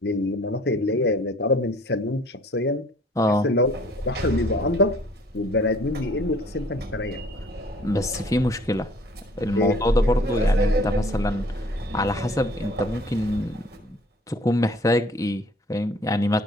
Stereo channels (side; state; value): both; normal; correlation 0.54